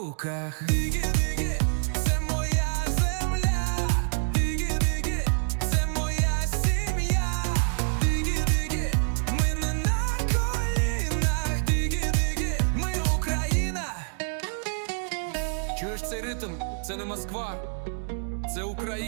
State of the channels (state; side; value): silent; left; digital silence